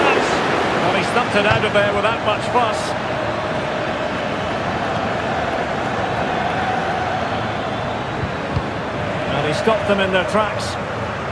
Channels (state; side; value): identical; both; correlation 1.00